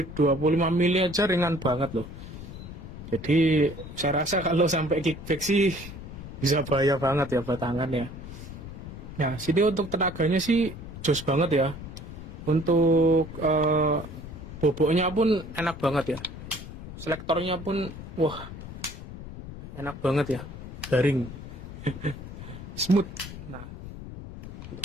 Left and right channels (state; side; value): noise; left; rumble, 11 dB below the sound